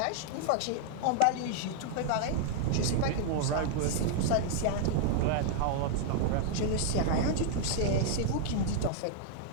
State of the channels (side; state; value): both; different; correlation -0.01